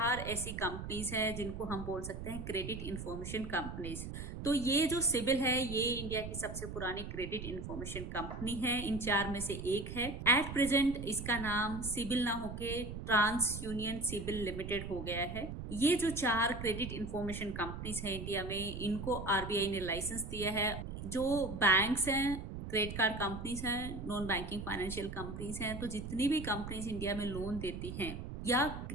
ऐसी कंपनीज हैं जिनको हम बोल सकते हैं क्रेडिट इंफॉर्मेशन कंपनीज। तो ये जो सिबिल है ये इंडिया की सबसे पुरानी क्रेडिट इंफॉर्मेशन कंपनी है। इन 4 में से एक है। एट प्रेजेंट इसका नाम सिबिल ना होके ट्रांस यूनियन सिबिल लिमिटेड हो गया है। ये जो 4 क्रेडिट इंफॉर्मेशन कंपनीज है इंडिया में, इनको आरबीआई ने लाइसेंस दिया है। जो बैंक्स हैं, क्रेडिट कार्ड कंपनीज हैं, नॉन बैंकिंग फाइनेंशियल कंपनीज हैं, तो जितनी भी कंपनीज इंडिया में लोन देती हैं या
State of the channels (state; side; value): noise; right; rumble, 7 dB below the sound